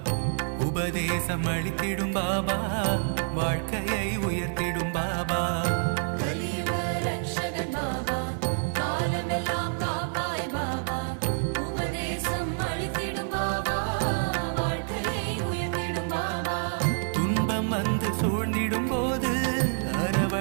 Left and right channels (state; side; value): silent; left; 58 dB below the other